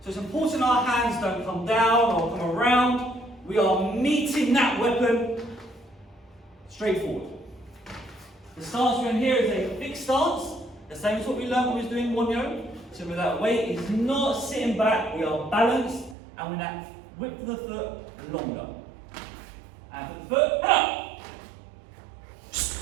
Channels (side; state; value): left; drops out; at 16.2 s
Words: So it's important our hands don't come down or come around. We are meeting that weapon straight forward. The stance we're in here is a fixed stance, the same as what we learned when we was doing Wonyo. So with that weight is not sitting back, we are balanced, and with that width of the foot longer. And for the foot,